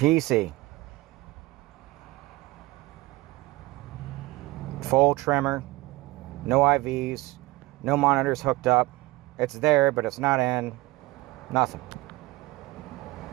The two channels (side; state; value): left; quieter; 20.3 dB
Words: Full tremor. No IVs. No monitors hooked up. It's there, but it's not in. Nothing.